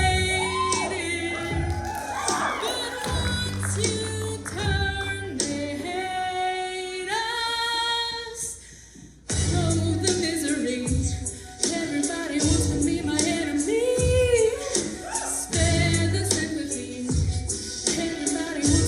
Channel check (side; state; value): both; identical; correlation 1.00